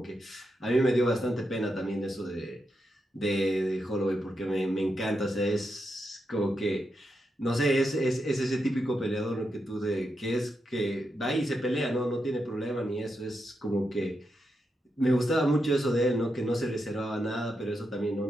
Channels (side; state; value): both; normal; correlation 0.85